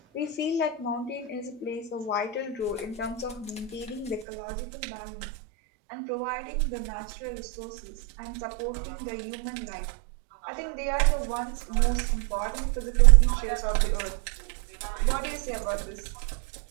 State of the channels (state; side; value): drops out; left; at 4.2 s